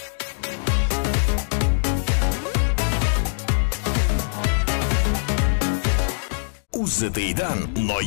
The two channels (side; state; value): right; silent; digital silence